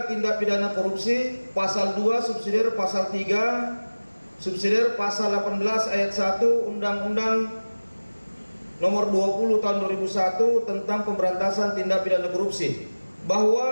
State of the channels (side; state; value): both; inverted; correlation -1.00